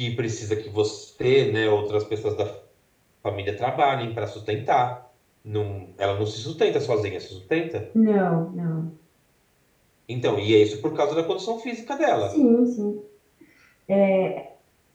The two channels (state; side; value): identical; both; correlation 1.00